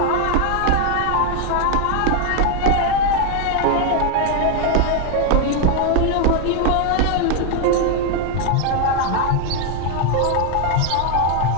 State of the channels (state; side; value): different; both; correlation 0.01